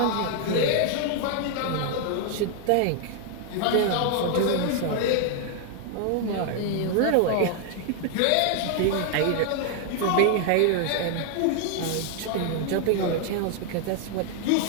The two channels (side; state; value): both; different; correlation 0.00